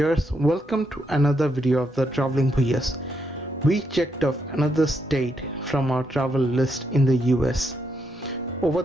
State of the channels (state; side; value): normal; both; correlation 0.79